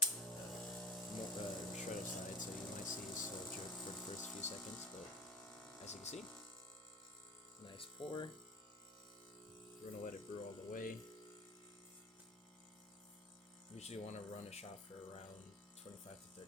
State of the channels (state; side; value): normal; both; correlation 0.35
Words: shredder side, so you might see a slow jerk for the first few seconds, but as you can see, nice pour. We're going to let it brew all the way. Usually want to run a shot for around 25 to